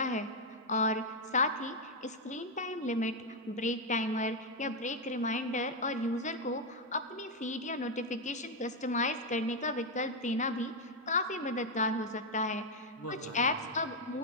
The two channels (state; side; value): normal; both; correlation 0.02